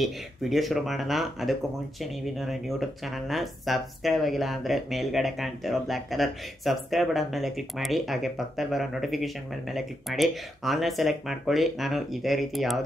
ವಿಡಿಯೋ ಶುರು ಮಾಡೋಣ. ಅದಕ್ಕೂ ಮುಂಚೆ ನೀವಿನ್ನು ನನ್ನ ಯೂಟ್ಯೂಬ್ ಚಾನಲ್ನ ಸಬ್ಸ್ಕ್ರೈಬ್ ಆಗಿಲ್ಲ ಅಂದರೆ ಮೇಲ್ಗಡೆ ಕಾಣ್ತಿರೋ ಬ್ಲ್ಯಾಕ್ ಕಲರ್ ಸಬ್ಸ್ಕ್ರೈಬ್ ಬಟನ್ ಮೇಲೆ ಕ್ಲಿಕ್ ಮಾಡಿ, ಹಾಗೆ ಪಕ್ಕದಲ್ಲಿ ಬರೋ ನೋಟಿಫಿಕೇಶನ್ ಮೇಲೆ ಕ್ಲಿಕ್ ಮಾಡಿ ಆನ್ಲೈನ್ ಸೆಲೆಕ್ಟ್ ಮಾಡ್ಕೊಳ್ಳಿ. ನಾನು ಇದೇ ರೀತಿ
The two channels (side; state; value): both; normal; correlation 0.83